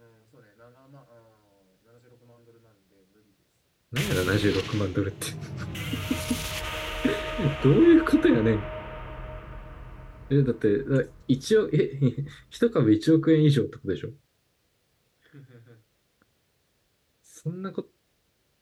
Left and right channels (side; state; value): both; identical; correlation 1.00